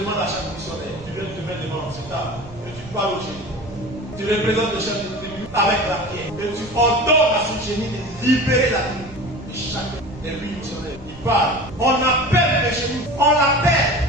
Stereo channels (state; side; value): noise; right; rumble, 18 dB below the sound